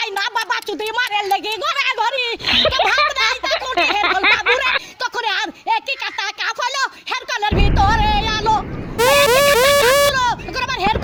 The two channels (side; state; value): both; identical; correlation 1.00